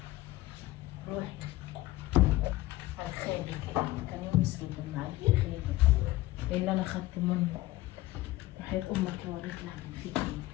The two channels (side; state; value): right; quieter; 17.6 dB